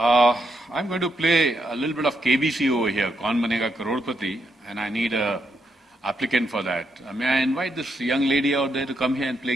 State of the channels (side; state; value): both; normal; correlation 0.79